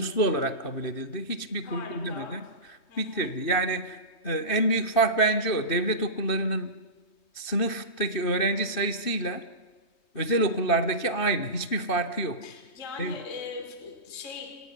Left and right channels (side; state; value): right; late; 3.2 ms